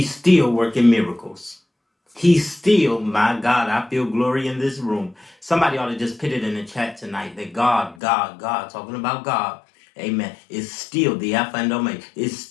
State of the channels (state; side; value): drops out; right; at 8.0 s